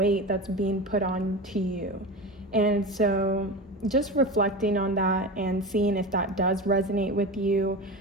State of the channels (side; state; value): both; normal; correlation 0.26